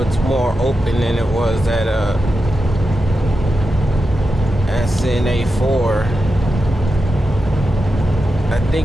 more open than it was at SNA 4. I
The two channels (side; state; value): both; normal; correlation 0.90